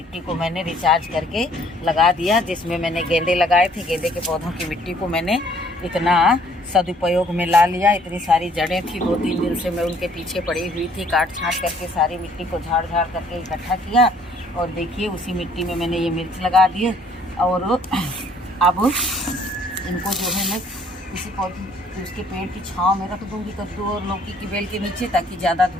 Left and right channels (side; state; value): both; normal; correlation 0.61